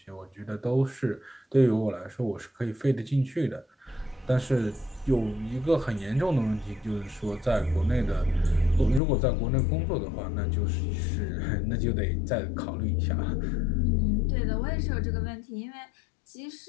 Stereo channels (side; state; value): right; drops out; at 9.0 s